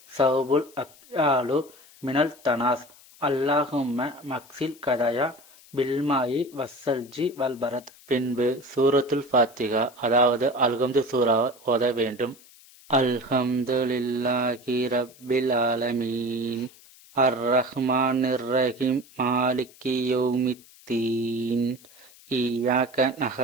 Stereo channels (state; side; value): noise; left; hiss, 24 dB below the sound